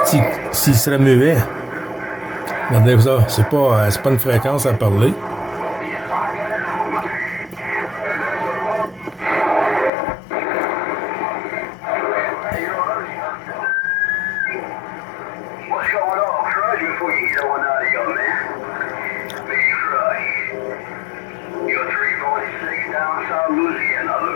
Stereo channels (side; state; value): right; drops out; at 9.9 s